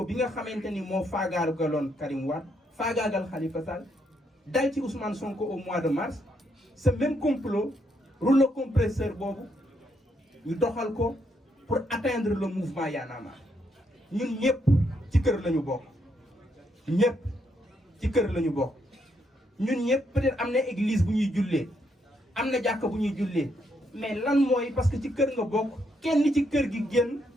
bi nga xamante ni moo faagaagaloon Karim Wade faagaagal Khalifa Sall dal ci Ousmane Sonko au mois de mars ce même complot rouleau compresseur boobu ñu doxal ko pour atteindre le mouvement Y'en a marre ñun ñëpp ci kër lañu bokk ñëpp ci kër lañu bokk ñun ñëpp peut-être am na église bu ñuy jullee am na jàkka bu ñuy jullee mais lan mooy parce que ci kër nga bokk kenn ci kër gi génn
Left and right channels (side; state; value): both; normal; correlation 0.76